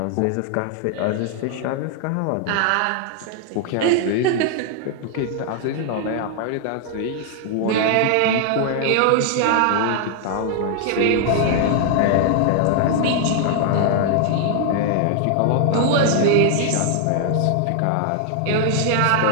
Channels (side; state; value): both; different; correlation 0.00